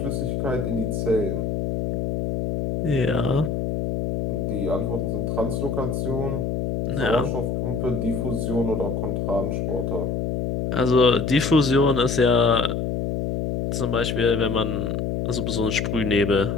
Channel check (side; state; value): left; noise; hum, 1 dB below the sound